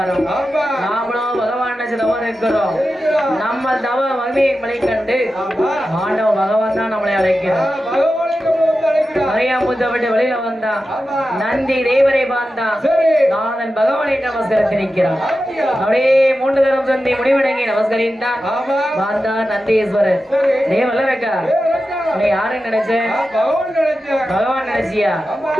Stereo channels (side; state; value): both; normal; correlation 0.92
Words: நாமளும் பகவான் தவறு இருக்கிறோம். நம்ம தவ மகிமையை மலை கண்டு ஆண்டவ பகவான் தான் நம்மளை அழைக்கிறோம். கரையாம்பூச்சை விட்டு வெளியில வந்தான் நந்தி தேவரை பார்த்தான். நாதன் பகவானை நமஸ்கரித்து நிற்கிறான். அப்படியே 3 தரம் சந்தி முடிவடங்கி நமஸ்கரித்தான். பார்த்தான் நந்தீஸ்வரர். தேவல்லரக்கா நீ யாருன்னு நினைச்சேன்? பகவான் நினைச்சியா?